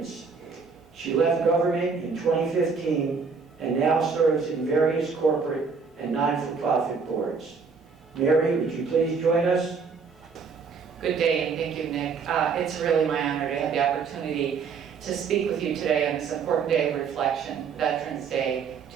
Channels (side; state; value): left; quieter; 5.4 dB